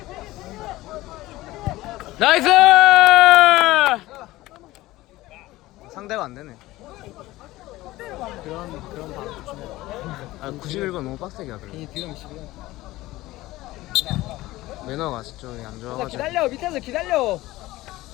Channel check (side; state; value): right; quieter; 17.8 dB